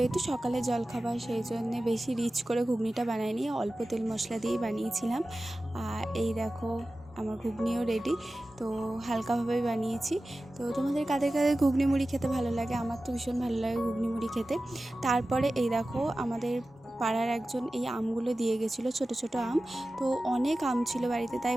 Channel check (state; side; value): normal; both; correlation 0.95